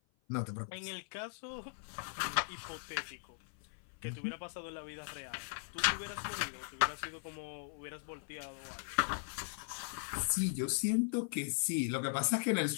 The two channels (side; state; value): right; silent; 52 dB below the other